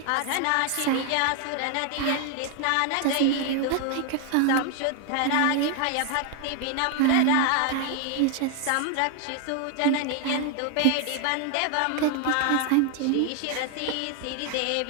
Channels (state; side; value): different; both; correlation 0.01